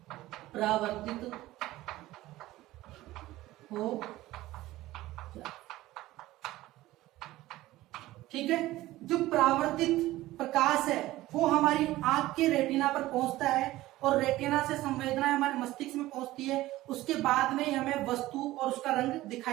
परावर्तित हो ठीक है। जो परावर्तित प्रकाश है वो हमारी आंख के रेटिना पर पहुंचता है और रेटिना से संवेदना हमारे मस्तिष्क में पहुंचती है। उसके बाद में ही हमें वस्तु और उसका रंग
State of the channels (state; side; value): quieter; left; 16.8 dB